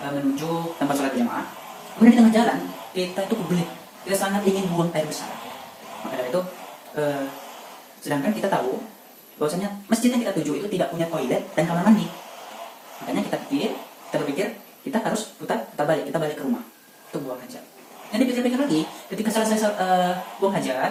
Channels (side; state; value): both; identical; correlation 1.00